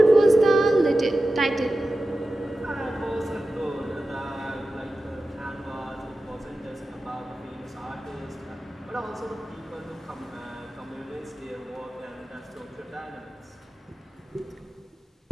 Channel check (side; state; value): both; normal; correlation 0.94